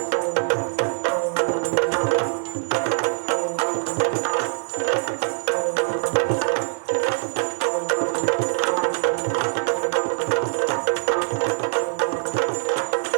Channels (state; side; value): silent; left; 63 dB below the other